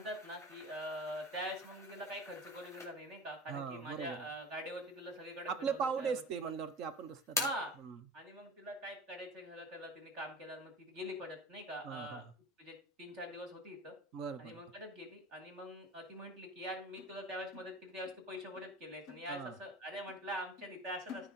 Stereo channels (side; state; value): both; normal; correlation 0.37